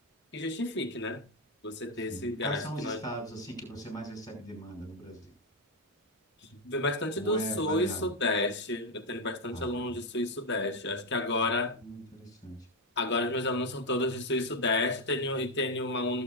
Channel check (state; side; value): normal; both; correlation 0.05